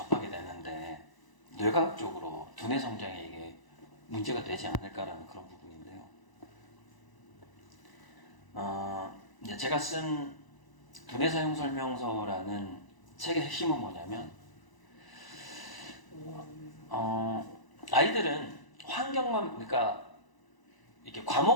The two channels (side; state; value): right; late; 1.0 ms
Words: 되는데 뇌과학적으로 두뇌 성장에 이게 문제가 되지 않을까라는 그런 부분인데요. 이제 제가 쓴 두뇌 사용 설명서라는 책의 핵심은 뭐냐면, 아이들은 환경만, 그러니까 이렇게